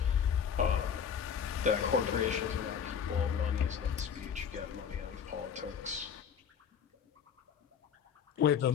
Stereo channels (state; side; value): quieter; right; 7.5 dB